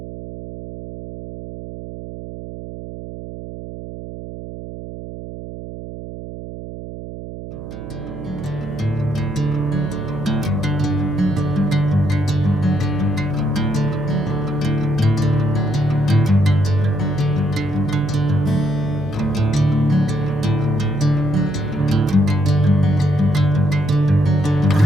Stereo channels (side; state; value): right; noise; hum, 11 dB below the sound